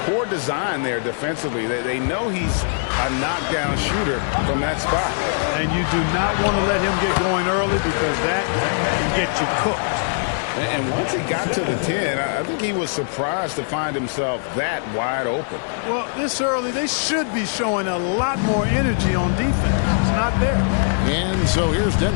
Poor design there defensively. They know he's a knockdown shooter from that spot. And you do not want to let him get going early because that can get you cooked. And once he got to the 10, I think he was surprised to find himself that wide open. Well, this early, they should be showing a lot more energy on defense. It's not there. And so here's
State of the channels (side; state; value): right; silent; digital silence